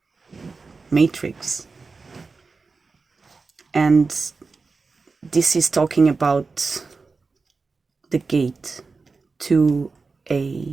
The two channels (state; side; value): quieter; left; 4.3 dB